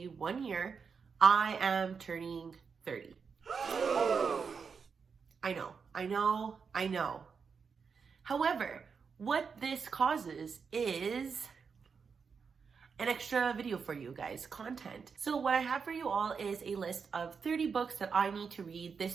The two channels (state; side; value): quieter; left; 5.8 dB